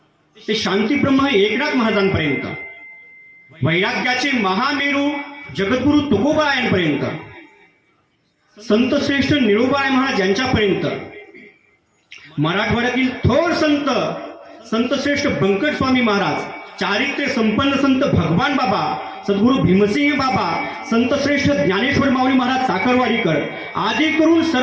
ते शांतीब्रह्म एकनाथ महाराजांपर्यंत, वैराग्याचे महामेरू जगद्गुरु तुकोबारायांपर्यंत, संत श्रेष्ठ निळोबाराय महाराज यांच्यापर्यंत, मराठवाड्यातील थोर संत श्रेष्ठ बंकट स्वामी महाराज, चारित्र्य संपन्न संत भगवान बाबा, सद्गुरु भीमसिंह बाबा, संत श्रेष्ठ ज्ञानेश्वर माऊली महाराज साखरवाडीकर आदी करून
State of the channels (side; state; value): both; identical; correlation 1.00